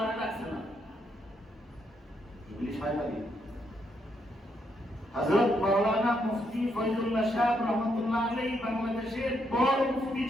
রাখছে না, এগুলি শয়তানি। হযরত মাওলানা মুফতি ফয়জুল্লাহ শাহ রহমাতুল্লাহ আলাইহি বাংলাদেশের বড় মুফতি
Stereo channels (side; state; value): both; normal; correlation 0.77